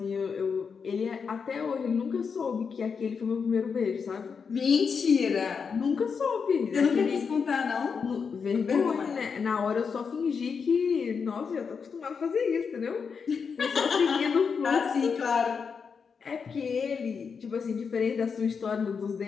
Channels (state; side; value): quieter; right; 5.9 dB